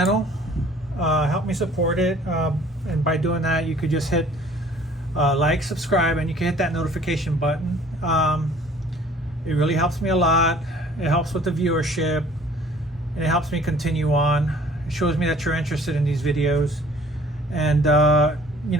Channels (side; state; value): both; normal; correlation 0.53